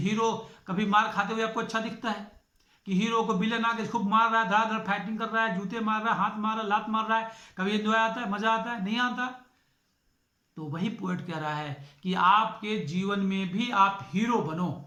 कभी मार खाते हुए आपको अच्छा दिखता है कि हीरो को विलन आके खूब मार रहा है, धड़ाधड़ फाइटिंग कर रहा है, जूते मार रहा है, हाथ मार रहा है, लात मार रहा है, कभी एंजॉय आता है, मजा आता है? नहीं आता। तो वही पोएट कह रहा है कि आपके जीवन में भी आप हीरो बनो।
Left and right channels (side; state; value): both; identical; correlation 1.00